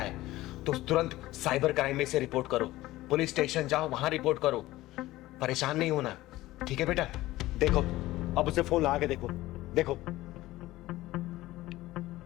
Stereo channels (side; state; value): right; quieter; 17.0 dB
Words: तो तुरंत साइबर क्राइम में से रिपोर्ट करो, पुलिस स्टेशन जाओ, वहां रिपोर्ट करो। परेशान नहीं होना, ठीक है बेटा? देखो अब उसे फोन लगा के देखो, देखो।